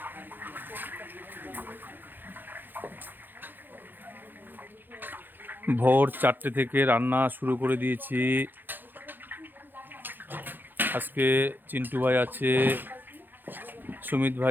ভোর 4টে থেকে রান্না শুরু করে দিয়েছি। আজকে চিন্টু ভাই আছে, সুমিত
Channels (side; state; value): left; late; 0.092 ms